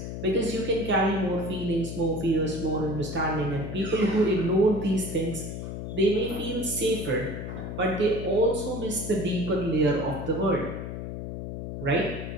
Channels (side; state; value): left; noise; hum, 7 dB below the sound